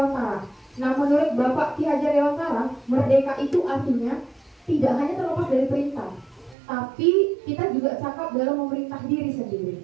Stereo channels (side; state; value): left; drops out; at 6.6 s